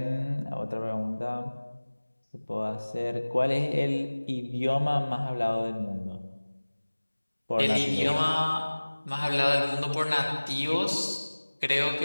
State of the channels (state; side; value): inverted; both; correlation -1.00